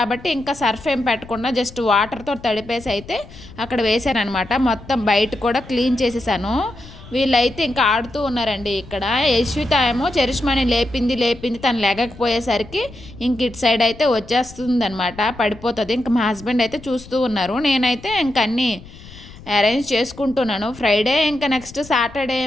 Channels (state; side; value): noise; left; rumble, 19 dB below the sound